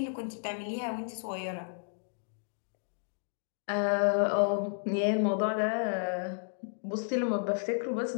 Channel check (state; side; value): silent; right; digital silence